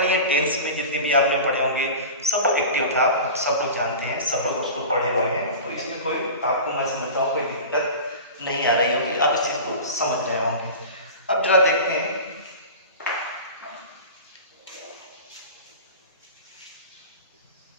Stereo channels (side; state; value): both; inverted; correlation -0.33